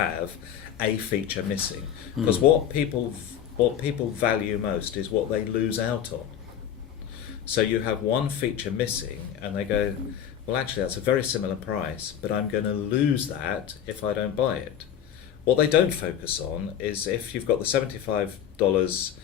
a feature missing, because what people value most is what they lose out on. So you have one feature missing, and they go, well, actually, that's a very similar price, but I'm going to lose that if I don't buy it. What they don't focus on is if you've got the $75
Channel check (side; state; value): right; quieter; 9.6 dB